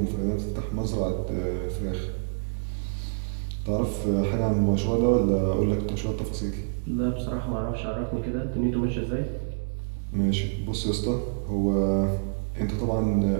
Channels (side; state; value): left; silent; digital silence